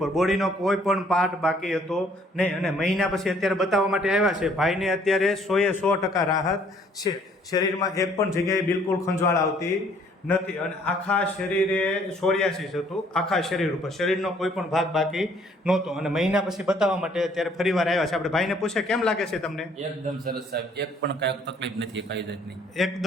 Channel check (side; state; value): both; normal; correlation 0.61